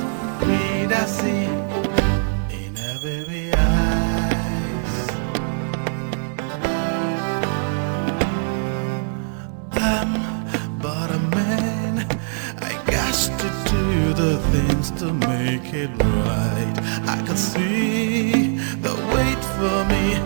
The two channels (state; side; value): silent; left; 61 dB below the other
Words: To make it right, I could see the wait for me,